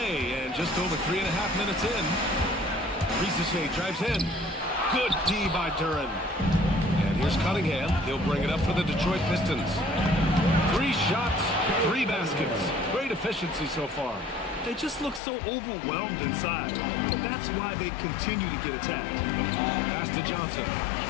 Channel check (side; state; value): right; drops out; at 15.2 s